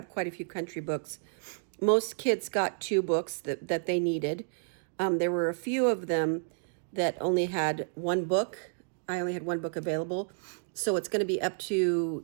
quite a few country books. Most kids got 2 books that they needed. There were a few of them that only had 1 book. I only had 1 book available. So it's going to be up to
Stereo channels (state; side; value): silent; left; digital silence